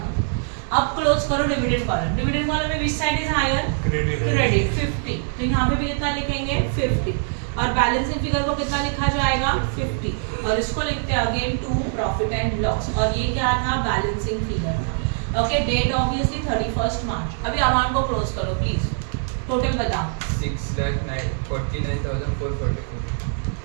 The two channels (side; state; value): left; silent; 61 dB below the other